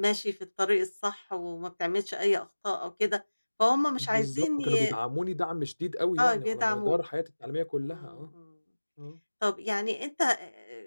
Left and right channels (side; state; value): both; inverted; correlation -1.00